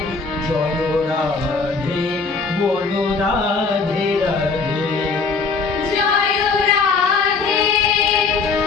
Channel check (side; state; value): right; quieter; 4.6 dB